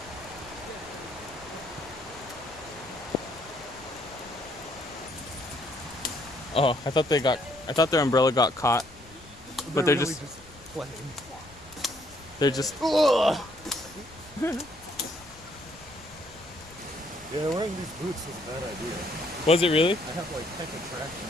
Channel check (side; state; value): left; noise; rumble, 22 dB below the sound